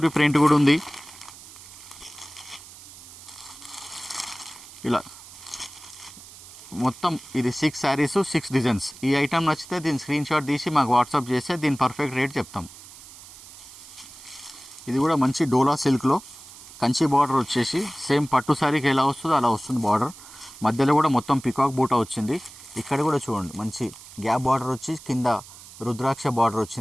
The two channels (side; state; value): right; noise; hiss, 18 dB below the sound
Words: ప్రింట్ కూడా ఉంది. ఇలా మొత్తం ఇది 6 శారీస్ 6 డిజైన్స్. ఈ ఐటమ్ నచ్చితే దీని స్క్రీన్ షాట్ తీసి మాకు వాట్సాప్ చేస్తే దీని పర్ఫెక్ట్ రేట్ చెప్తాం. ఇది కూడా మంచి డోలా సిల్క్లో కంచి బార్డర్ వచ్చేసి సేమ్ పట్టు శారీకి ఎలా వస్తుందో అలా వస్తుంది బార్డర్. మధ్యలో కూడా మొత్తం పికాక్ బూటా వచ్చింది. ఇక్కడ కూడా చూడండి, మంచి గ్యాప్ బార్డర్ వచ్చి కింద రుద్రాక్ష బార్డర్